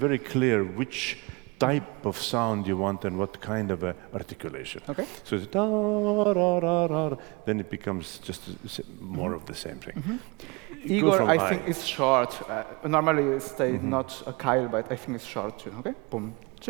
clear which type of sound you want and what kind of a articulation. Okay. So it's da ra ra ra, then it becomes just more of the same thing. Go Igor, from I think it's short. Normally it stays Mm-hmm. not a Kyle, but I think it's short too. Okay. Boom.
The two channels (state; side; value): quieter; left; 27.1 dB